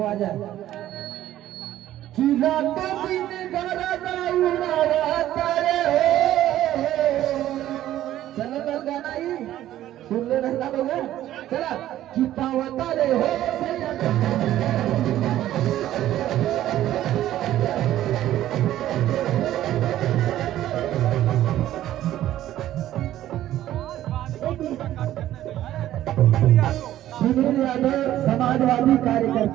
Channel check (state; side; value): quieter; left; 13.2 dB